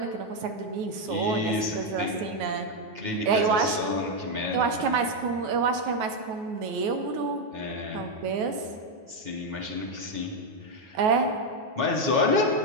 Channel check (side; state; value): left; late; 9.3 ms